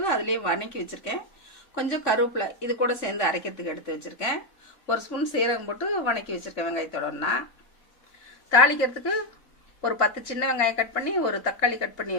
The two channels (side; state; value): right; late; 3.5 ms